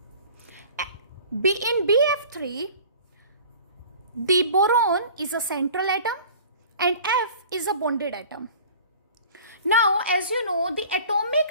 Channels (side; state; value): both; inverted; correlation -0.45